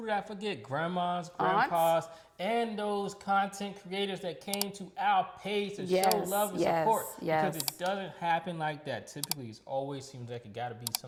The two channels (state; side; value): identical; both; correlation 1.00